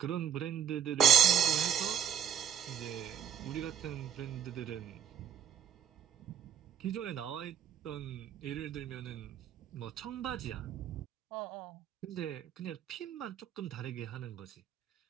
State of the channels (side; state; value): left; quieter; 8.9 dB